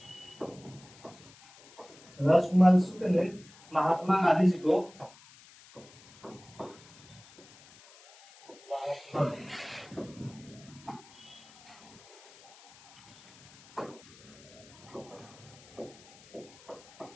शुक्ल ने महात्मा गांधी जी को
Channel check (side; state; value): left; noise; hiss, 23 dB below the sound